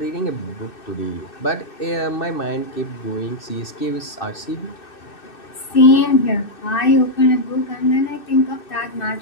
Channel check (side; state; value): right; late; 2.6 ms